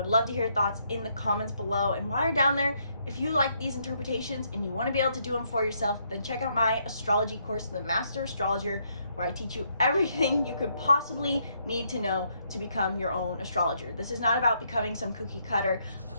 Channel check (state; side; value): inverted; both; correlation -0.74